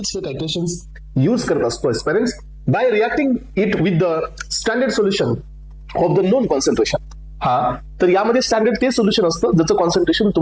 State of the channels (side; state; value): both; identical; correlation 1.00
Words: हे टायट्रेशन्स यूज करत असतो aspirants, by reacting it with the standard solution of the known concentration. तर यामध्ये standard ते सोल्युशन असतं ज्याचं कॉन्सन्ट्रेशन